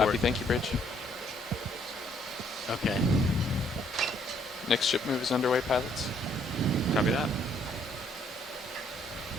port. thank you, Bridge. Okay. Next ship move is underway, pilots. Copy that.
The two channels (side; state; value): both; normal; correlation 0.66